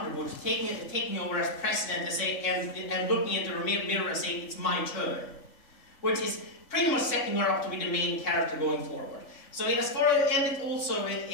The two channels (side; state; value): right; late; 3.6 ms